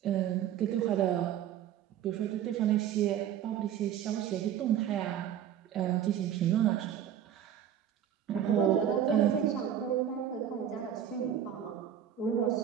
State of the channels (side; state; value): left; quieter; 9.9 dB